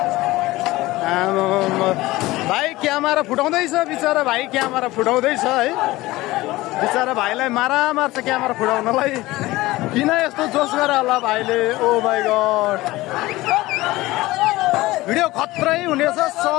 भाइ क्यामेरा फुटाउँदैछ बिचरा भाइ क्यामेरा फुटाउँदैछ है बिचरा भाइलाई मारा मार्छ क्यामेरा फुटाउनलाई किन यस्तो जोस गरे होला भाइले ओ माइ गॉड भिडियो खत्रै हुनेछ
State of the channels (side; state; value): right; quieter; 18.8 dB